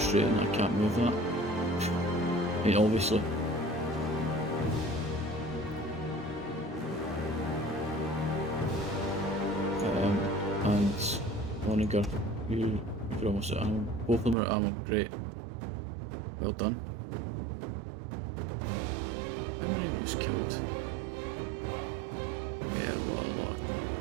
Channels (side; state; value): left; drops out; at 14.4 s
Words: I can't move that. I mean, obviously. And Onager, you're almost at ammo. Both of them are at ammo, great. Well done. How many was killed? Yeah, what a lot.